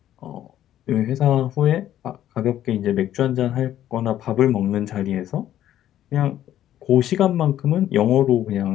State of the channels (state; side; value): quieter; right; 12.0 dB